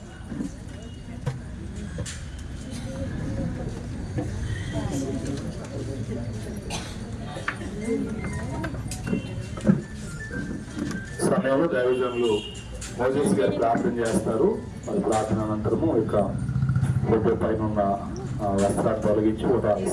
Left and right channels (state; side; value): identical; both; correlation 1.00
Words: సమయంలో దైవజనులు మోజెస్ గారు ప్రార్థన చేస్తారు. మరి ప్రార్థన అనంతరము ఇక ఫోటో పైన ఉన్న వస్త్రాన్ని తొలగించి ఫోటో